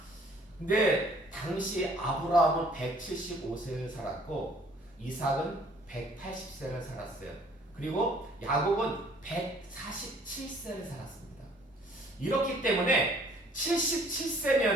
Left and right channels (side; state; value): both; normal; correlation 0.58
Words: 근데 당시 아브라함은 175세를 살았고 이삭은 180세를 살았어요. 그리고 야곱은 147세를 살았습니다. 이렇기 때문에